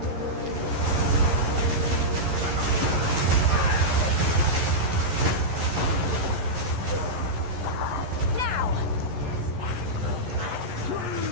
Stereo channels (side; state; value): left; late; 12 ms